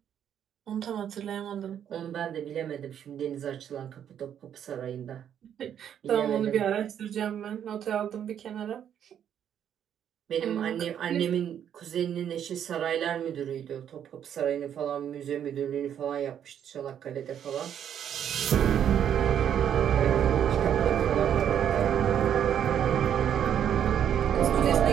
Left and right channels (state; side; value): quieter; left; 9.3 dB